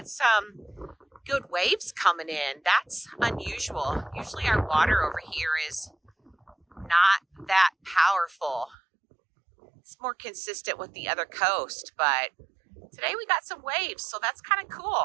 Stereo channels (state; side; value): drops out; left; at 8.8 s